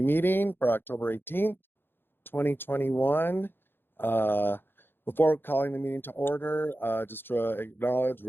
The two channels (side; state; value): right; late; 0.10 ms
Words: meeting for October 18th, 2021. Before calling the meeting to order, just to acknowledge